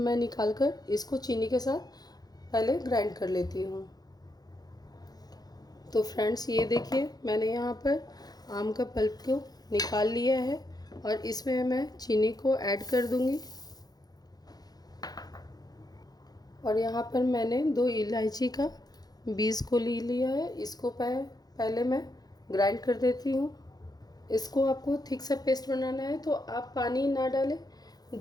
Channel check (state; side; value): late; right; 0.19 ms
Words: निकाल कर इसको चीनी के साथ पहले ग्राइंड कर लेती हूँ। तो फ्रेंड्स, ये देखिए, मैंने यहाँ पर आम का पल्प को निकाल लिया है, और इसमें मैं चीनी को ऐड कर दूँगी। और यहाँ पर मैंने 2 इलायची का बीज को लिया है। इसको पहले मैं ग्राइंड कर देती हूँ। इसको आपको थिक सा पेस्ट बनाना है, तो आप पानी ना डालें,